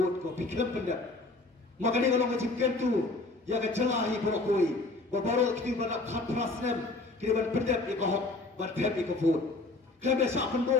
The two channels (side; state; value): right; quieter; 3.2 dB